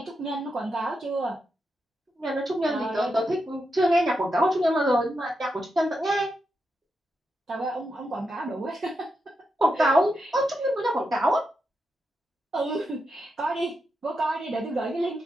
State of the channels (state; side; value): normal; both; correlation 0.86